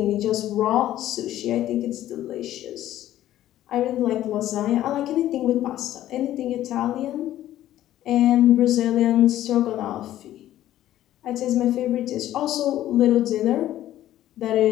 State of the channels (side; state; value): right; quieter; 13.2 dB